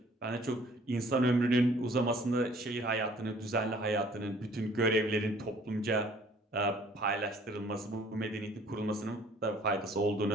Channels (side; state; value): both; normal; correlation 0.56